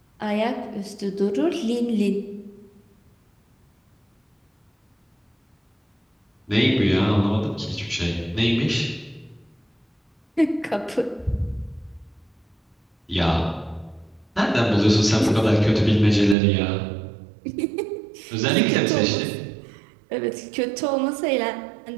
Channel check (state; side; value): drops out; left; at 16.4 s